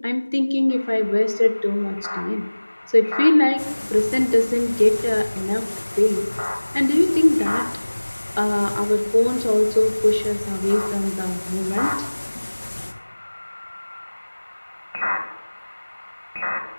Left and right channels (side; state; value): both; inverted; correlation -1.00